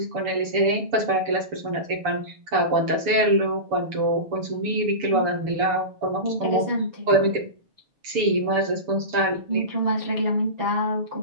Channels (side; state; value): left; late; 6.9 ms